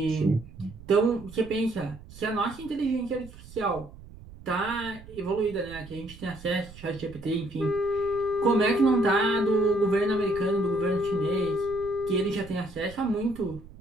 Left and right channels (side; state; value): right; noise; rumble, 18 dB below the sound